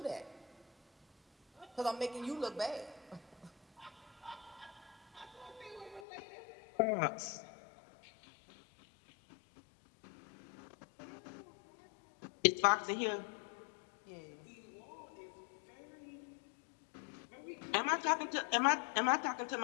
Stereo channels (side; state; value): right; drops out; at 6.0 s